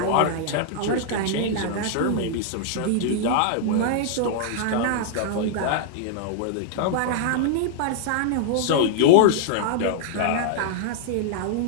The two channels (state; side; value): different; both; correlation -0.01